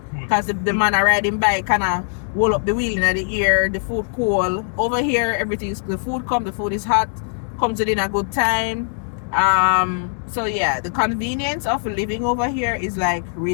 because the man are riding bike kind of roll up the wheel in the ear, the food cool. Over here, everything's the food come, the food is hot, comes within a good time. So yeah, the convenience of living over here is like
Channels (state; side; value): silent; right; digital silence